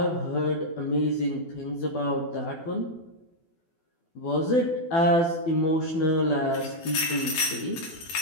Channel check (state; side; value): late; right; 12 ms